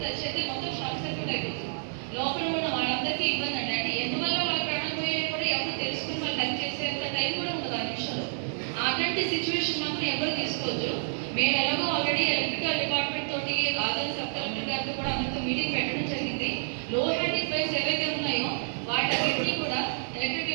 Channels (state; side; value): silent; left; 59 dB below the other